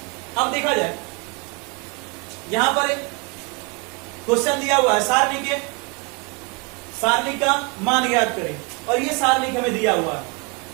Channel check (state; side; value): quieter; left; 29.9 dB